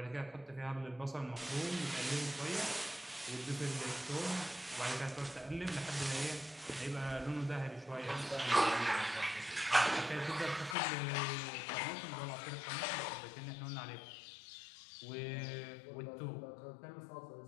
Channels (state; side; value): drops out; right; at 10.8 s